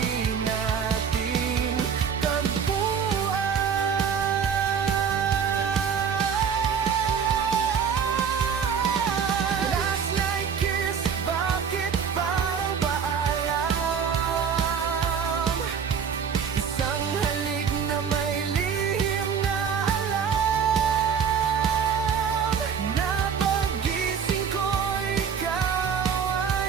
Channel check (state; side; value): quieter; left; 7.0 dB